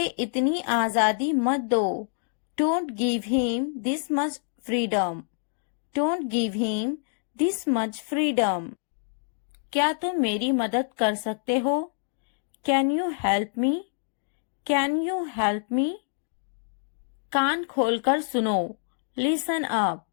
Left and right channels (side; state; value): right; silent; digital silence